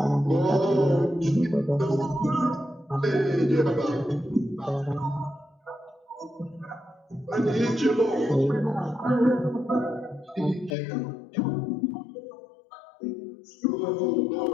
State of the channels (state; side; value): drops out; right; at 10.8 s